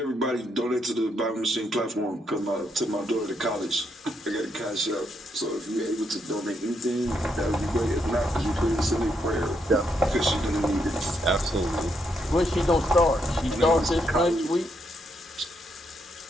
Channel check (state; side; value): normal; both; correlation 0.77